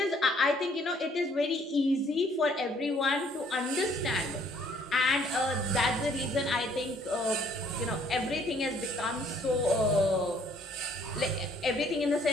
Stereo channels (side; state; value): both; normal; correlation 0.62